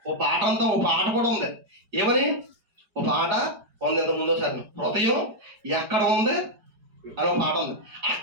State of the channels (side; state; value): left; late; 4.8 ms